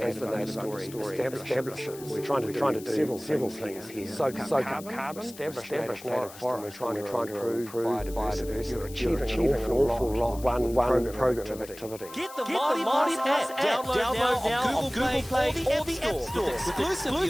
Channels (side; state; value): left; noise; hiss, 17 dB below the sound